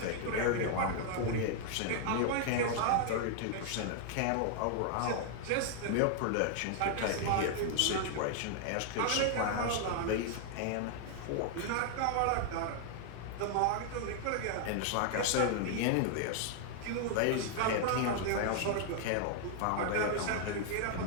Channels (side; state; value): both; different; correlation 0.00